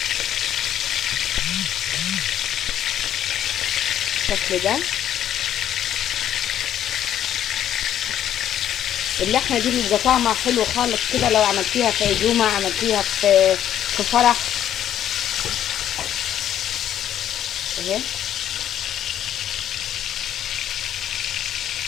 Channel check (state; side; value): quieter; right; 10.8 dB